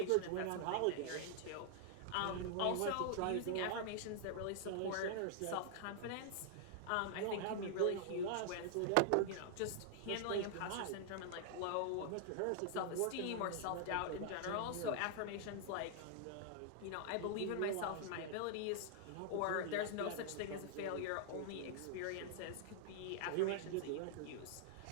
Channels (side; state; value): both; different; correlation -0.01